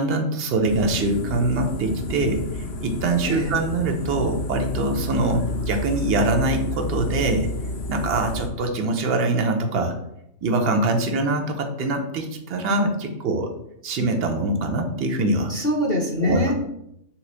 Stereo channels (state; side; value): late; right; 2.8 ms